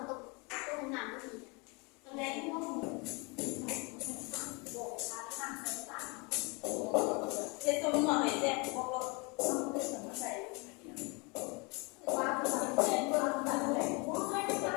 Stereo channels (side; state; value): right; quieter; 29.8 dB